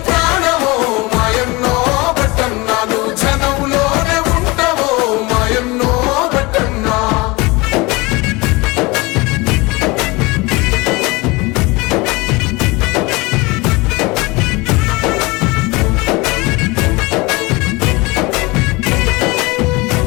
ప్రాణమో మాయన్నో బట్టన్నా నువ్వు జనంలోనే ఉంటావో మాయన్నో బట్టన్నా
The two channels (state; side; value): quieter; right; 24.1 dB